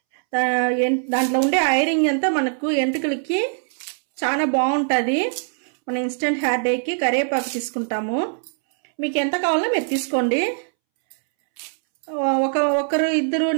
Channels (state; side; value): silent; left; 64 dB below the other